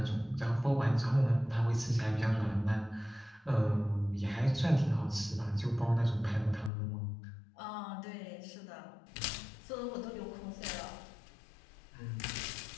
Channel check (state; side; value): drops out; right; at 6.7 s